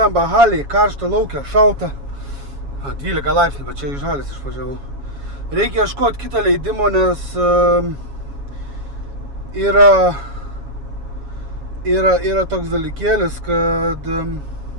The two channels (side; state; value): left; late; 7.2 ms